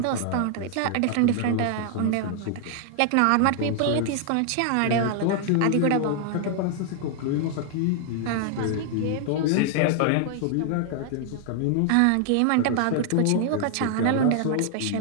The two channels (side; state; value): both; different; correlation 0.00